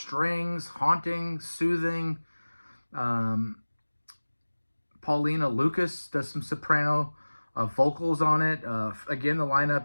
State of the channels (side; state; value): both; inverted; correlation -1.00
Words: haunting, soothing. Paulina Lucas does some soprano vocals on it. Again, the